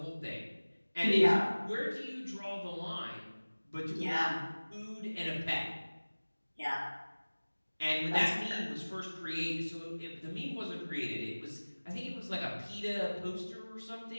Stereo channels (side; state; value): both; inverted; correlation -1.00